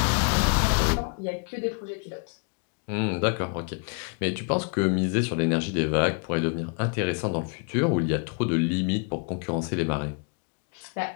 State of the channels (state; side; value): quieter; right; 38.9 dB